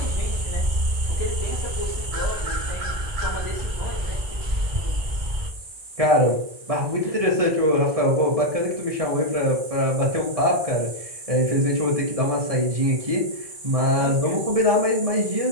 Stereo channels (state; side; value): late; left; 1.7 ms